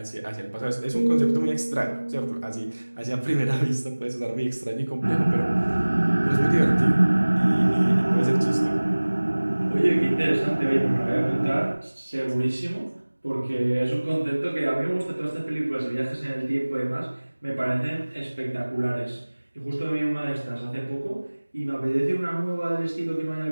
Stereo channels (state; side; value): inverted; both; correlation -1.00